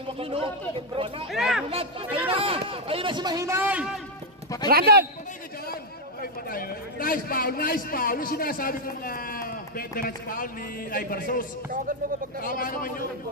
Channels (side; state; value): both; normal; correlation -0.01